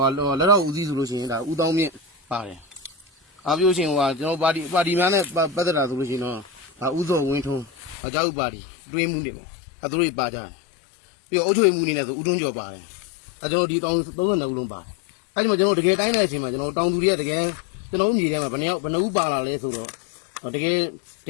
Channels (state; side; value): drops out; right; at 8.0 s